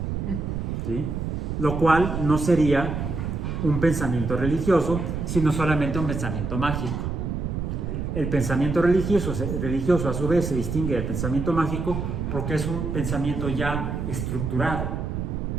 ¿Sí? Lo cual no sería un pensamiento religioso, sino solamente un pensamiento mágico. El pensamiento religioso a su vez se distingue del pensamiento mágico porque es un pensamiento ya estructurado,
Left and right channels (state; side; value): noise; right; rumble, 3 dB below the sound